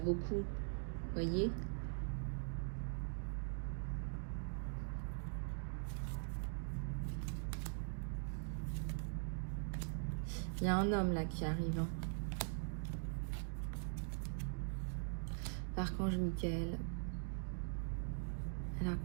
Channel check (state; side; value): silent; left; digital silence